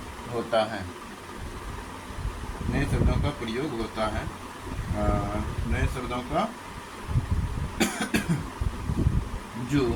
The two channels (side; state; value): both; identical; correlation 1.00